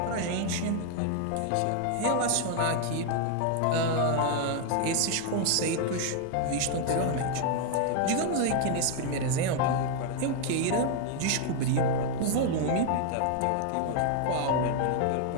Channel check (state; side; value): different; both; correlation 0.00